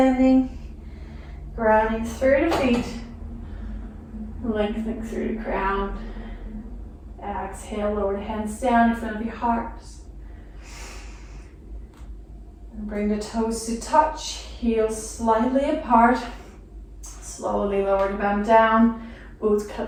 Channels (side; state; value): both; identical; correlation 1.00